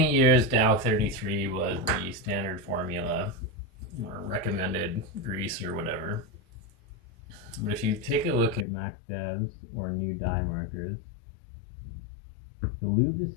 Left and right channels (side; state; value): right; drops out; at 8.7 s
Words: years, Dow 33 was the standard formula or recommended grease or whatever. But if you take a look at Mac Devs or new dye markers, the lube is